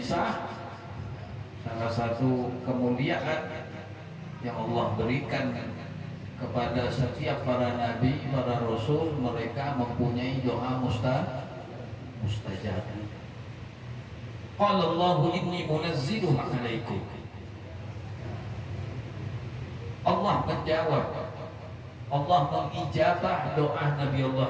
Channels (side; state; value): both; identical; correlation 1.00